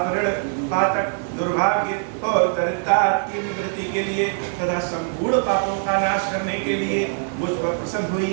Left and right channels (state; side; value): silent; left; digital silence